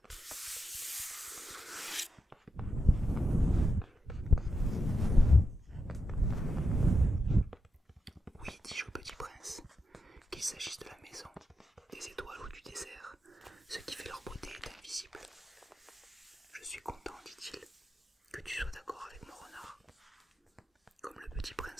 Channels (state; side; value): normal; both; correlation 0.87